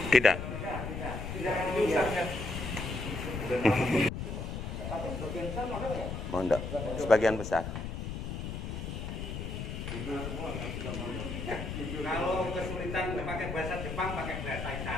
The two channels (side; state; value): left; noise; rumble, 5 dB below the sound